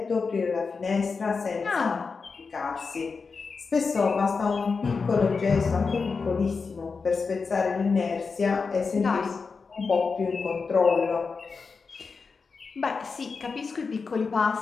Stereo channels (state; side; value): quieter; right; 4.8 dB